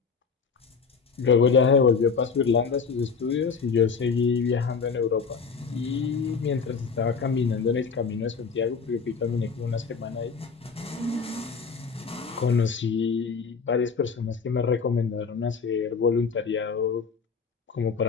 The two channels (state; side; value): quieter; right; 5.5 dB